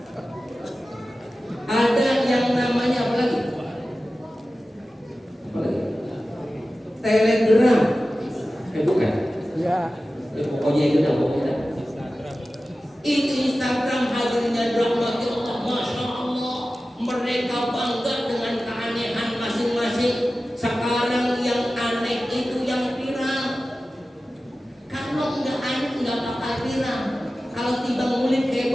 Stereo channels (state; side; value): normal; both; correlation 0.95